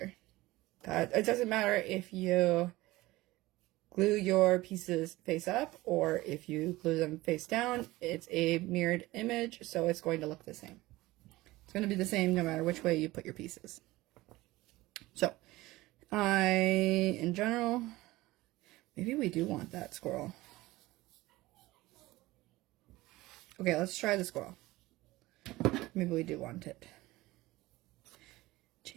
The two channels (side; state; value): left; quieter; 18.9 dB